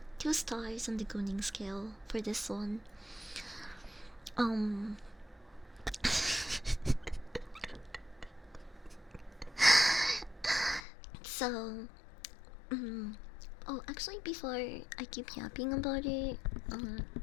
2 stars on the Gunning scale for this one. Um. So, oh, actually, before I keep yapping about it,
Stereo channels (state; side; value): drops out; right; at 10.8 s